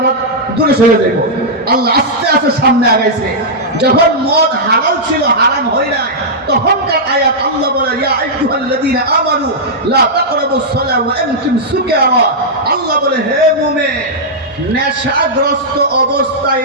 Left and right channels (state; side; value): normal; both; correlation -0.09